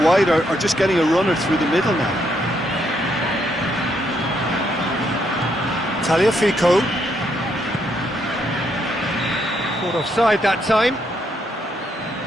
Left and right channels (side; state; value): both; normal; correlation 0.75